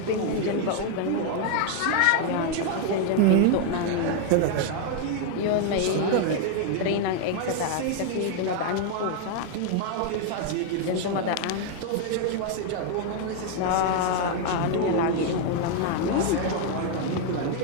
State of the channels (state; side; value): different; both; correlation 0.00